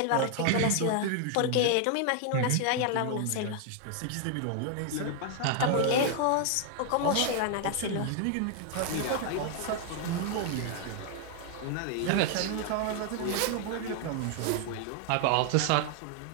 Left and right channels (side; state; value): both; different; correlation 0.00